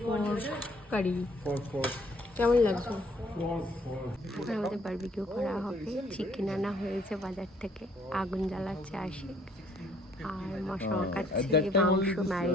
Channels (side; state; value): both; normal; correlation 0.63